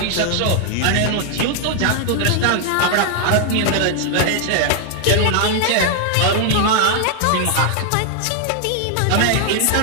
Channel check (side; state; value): both; different; correlation 0.00